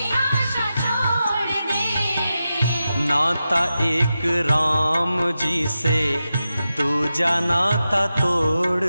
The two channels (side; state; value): both; inverted; correlation -0.91